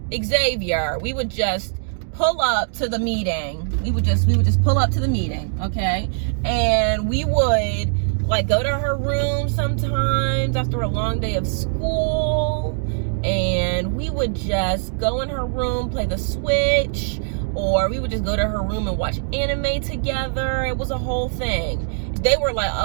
Xavier, we would just pull up to the meeting. We would just pull up to the meeting, okay? And we would like go to her room sometimes after a long day of school, and we would just go in her room, play the Switch, or we would just go to her room and watch anime together. It was a whole thing. They were like,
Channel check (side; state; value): left; silent; digital silence